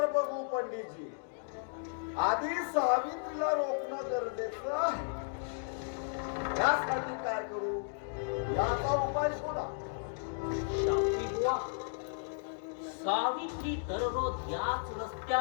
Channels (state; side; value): silent; right; digital silence